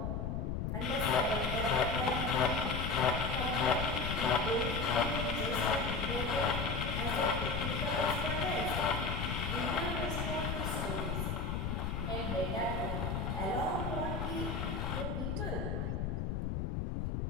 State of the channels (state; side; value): noise; left; rumble, 1 dB below the sound